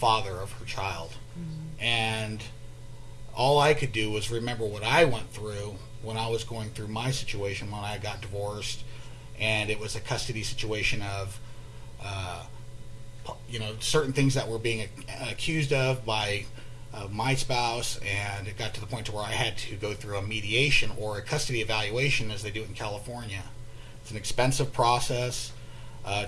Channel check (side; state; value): both; identical; correlation 1.00